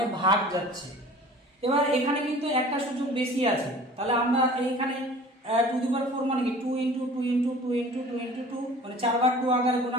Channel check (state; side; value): normal; both; correlation 0.45